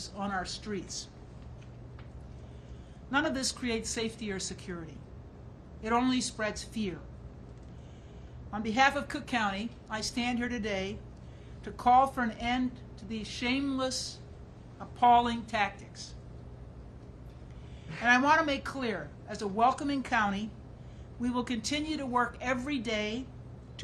on our streets. None of this creates safety or security. It only spreads fear. On behalf of Cook County, I stand here today to call for an end to these shameless, appalling tactics. And I want to make clear, as a welcoming county, we will continue to work every day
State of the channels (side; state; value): both; identical; correlation 1.00